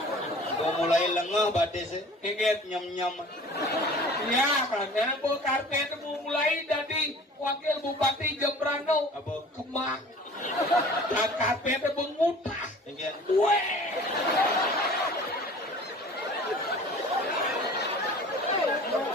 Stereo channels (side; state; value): both; normal; correlation 0.45